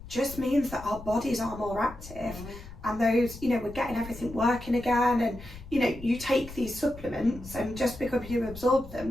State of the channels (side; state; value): left; noise; rumble, 15 dB below the sound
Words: just means that our bodies are more active, and those, you know, we're getting everything working again. And you know, you take these supplements, and just because you absorb